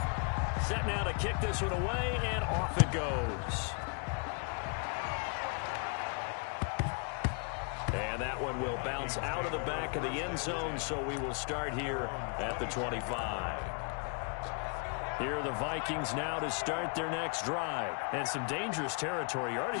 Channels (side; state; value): right; quieter; 39.1 dB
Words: Set now to kick this one away, and off it goes. And that one will bounce out of the back of the end zone, so we will start here at the 25. Here are the Vikings now to start their next drive. And some dangerous territory. You're